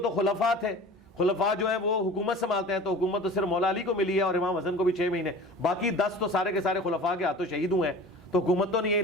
خلفاء تھے, خلفاء جو ہیں وہ حکومت سنبھالتے ہیں, تو حکومت تو صرف مولا علی کو ملی ہے اور امام حسن کو بھی 6 مہینے, باقی 10 تو سارے کے سارے خلفاء کے ہاتھوں شہید ہوئے ہیں, تو حکومت تو نہیں ہے,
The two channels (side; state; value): both; normal; correlation 0.40